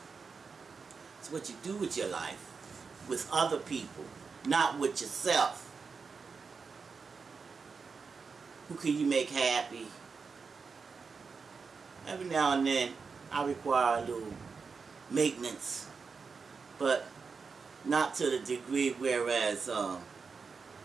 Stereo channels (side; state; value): left; quieter; 5.1 dB